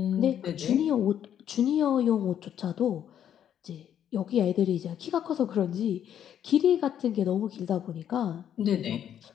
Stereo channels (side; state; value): right; quieter; 9.8 dB